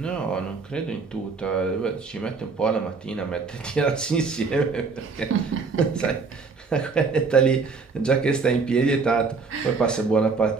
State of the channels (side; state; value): left; quieter; 4.6 dB